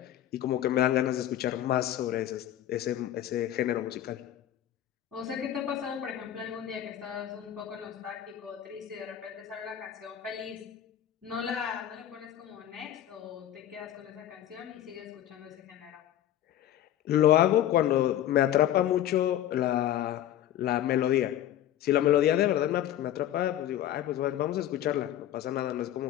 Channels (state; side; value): quieter; right; 11.9 dB